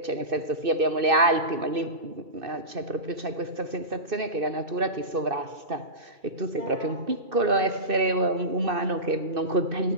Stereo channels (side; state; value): left; late; 2.6 ms